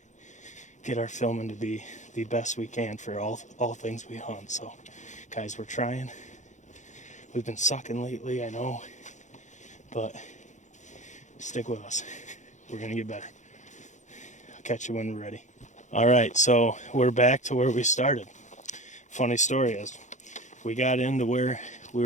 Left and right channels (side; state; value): right; late; 0.35 ms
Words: get our filming to be the best we can for all things we hunt. So guys, we're trying. We've been sucking lately, I know, but stick with us. We're gonna get better. I'll catch you when we're ready. All right, so we're back to where we started. Funny story is, we got into where we